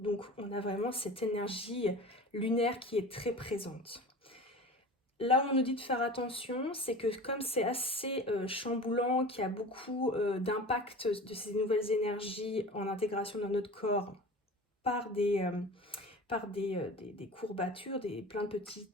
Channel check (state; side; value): normal; both; correlation 0.36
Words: on a vraiment cette énergie lunaire qui est très présente. Là où on nous dit de faire attention, c'est que comme c'est assez chamboulant, qu'il y a beaucoup d'impact de ces nouvelles énergies en intégration dans notre corps par des courbatures, plein de